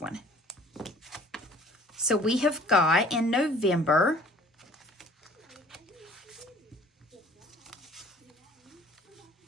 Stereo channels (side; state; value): both; normal; correlation 0.51